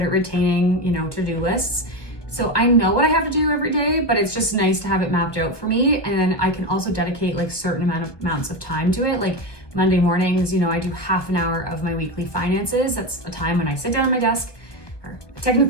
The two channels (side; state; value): right; late; 1.2 ms